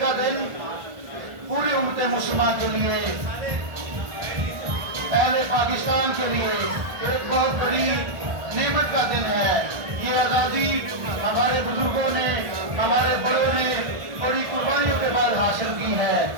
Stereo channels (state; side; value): late; left; 1.4 ms